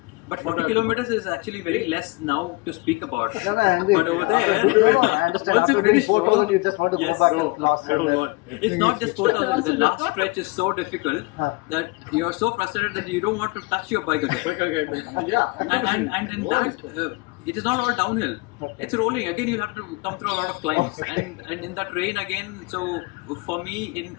But 40 kilometers is actually very less now to speak about. No, I agree. But over there, I understand. once you After finish 4,000, you just want to yes, go back and last. It's not just 4,000. The last stretch is so difficult that you are so frustrated that you don't want to touch your bike again. Yeah. And in that, it is not all downhill. Okay. It's rolling. Again, you'll have to come through a lot of climbs. And in that rain again, so for me,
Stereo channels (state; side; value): quieter; right; 25.9 dB